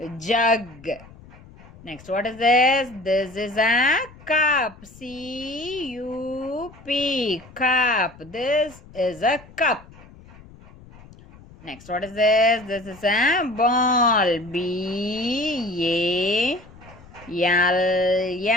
jug. Next, what is this? This is a cup. C-U-P. Cup. This is a cup. Next, what is this? This is a ball. B-A-L-L.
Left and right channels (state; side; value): noise; left; rumble, 22 dB below the sound